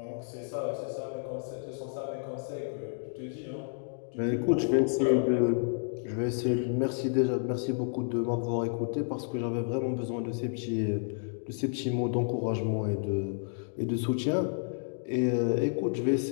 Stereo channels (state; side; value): silent; right; digital silence